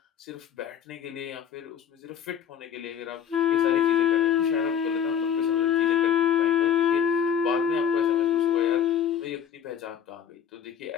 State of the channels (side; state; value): right; quieter; 8.6 dB